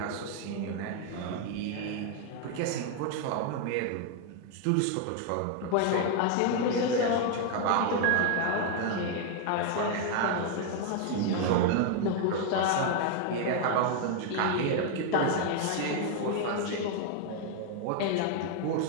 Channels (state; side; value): different; both; correlation 0.00